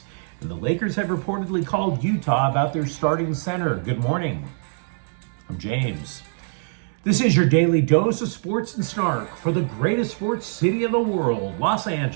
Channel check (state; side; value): silent; left; 63 dB below the other